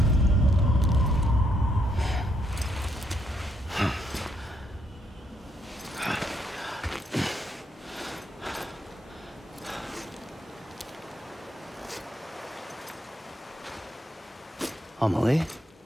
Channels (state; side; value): normal; both; correlation 0.75